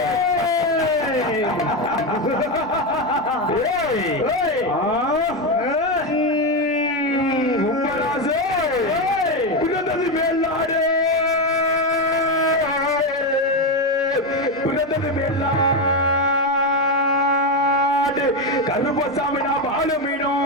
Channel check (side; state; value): both; normal; correlation 0.11